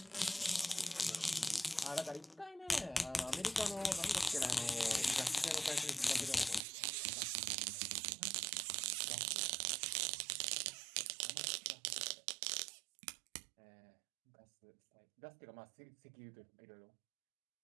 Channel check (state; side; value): drops out; left; at 6.6 s